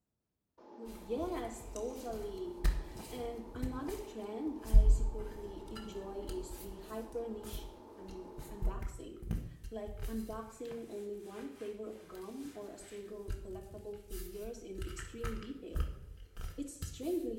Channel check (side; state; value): both; identical; correlation 1.00